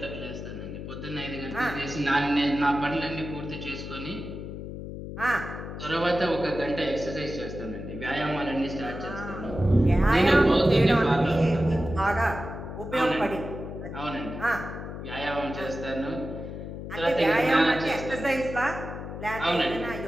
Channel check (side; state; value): left; noise; hum, 9 dB below the sound